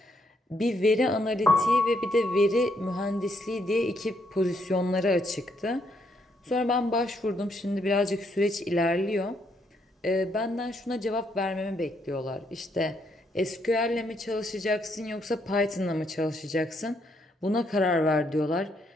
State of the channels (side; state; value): both; normal; correlation 0.74